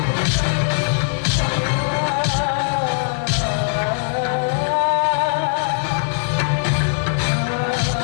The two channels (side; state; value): right; silent; digital silence